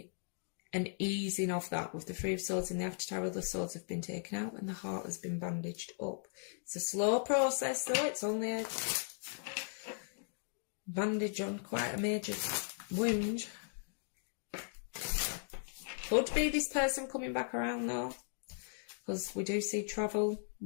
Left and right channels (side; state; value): right; silent; digital silence